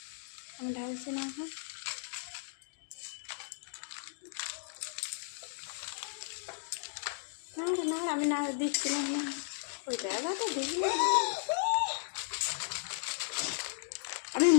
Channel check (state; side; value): silent; right; digital silence